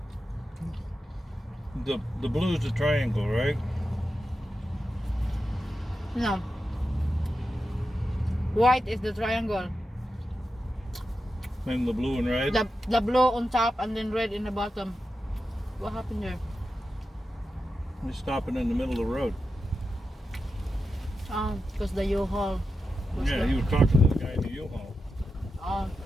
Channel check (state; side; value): normal; both; correlation 0.90